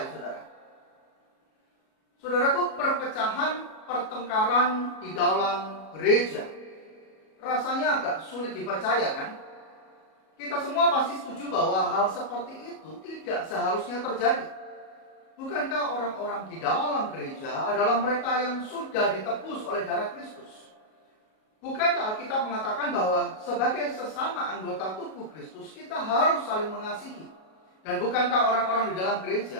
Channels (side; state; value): right; late; 37 ms